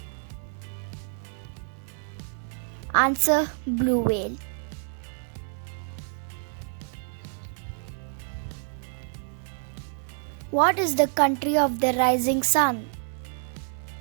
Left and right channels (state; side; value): silent; left; digital silence